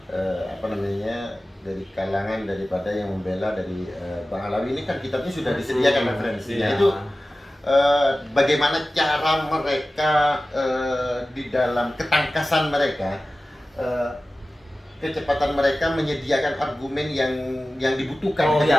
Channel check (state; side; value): normal; both; correlation 0.96